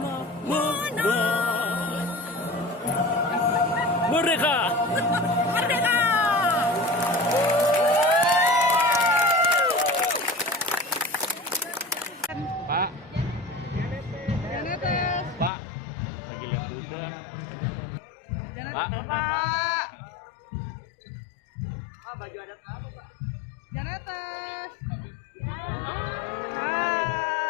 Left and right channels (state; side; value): drops out; right; at 15.5 s